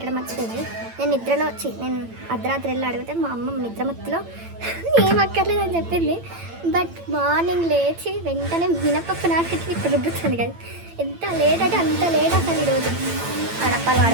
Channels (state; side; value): late; left; 8.9 ms